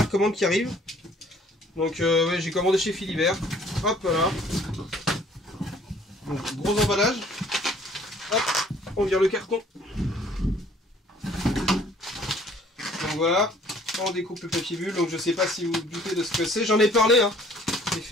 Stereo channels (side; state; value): both; normal; correlation 0.57